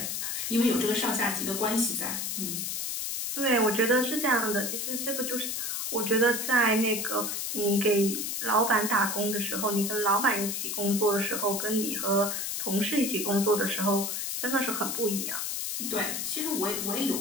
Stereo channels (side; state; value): left; noise; hiss, 2 dB below the sound